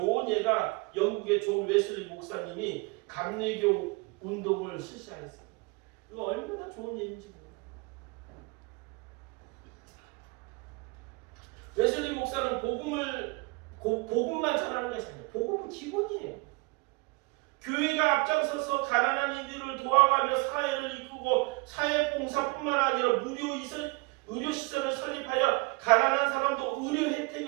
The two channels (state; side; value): quieter; left; 27.7 dB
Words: 예가 영국의 존 웨슬리 목사님이 감리교 운동을 실시하였어요. 이거 얼마나 좋은 예인지 몰라요. 웨슬리 목사는 복음만 전하는 것이 아니에요. 복음은 기본이에요. 교회가 앞장서서 가난한 이들을 도와가며 사회를 이끌고 사회봉사뿐만 아니라 의료시설을 설립하여 가난한 사람도 의료